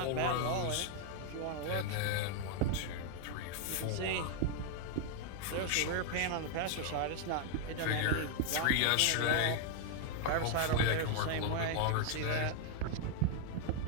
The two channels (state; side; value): different; both; correlation 0.00